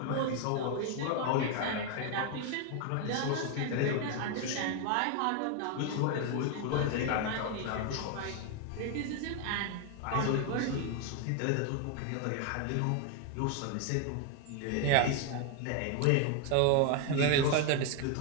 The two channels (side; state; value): both; different; correlation 0.01